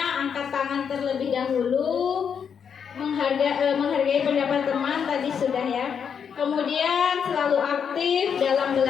angkat tangan terlebih dahulu, menghargai pendapat teman tadi sudah ya. Kemudian selalu aktif dalam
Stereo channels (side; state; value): right; quieter; 7.2 dB